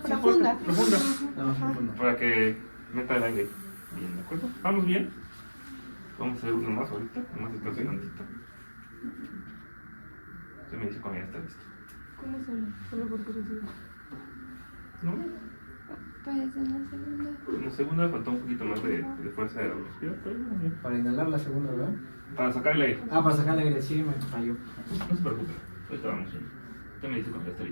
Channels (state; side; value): inverted; both; correlation -1.00